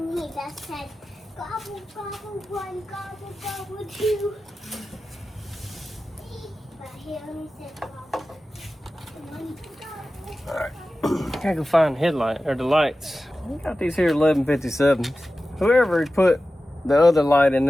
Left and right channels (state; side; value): normal; both; correlation 0.94